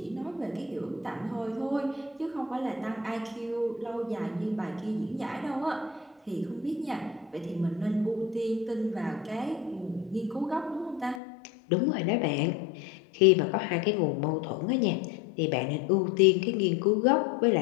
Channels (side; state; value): right; drops out; at 11.2 s